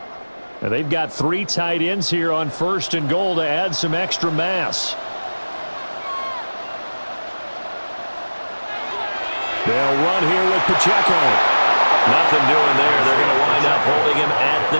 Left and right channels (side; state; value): both; inverted; correlation -1.00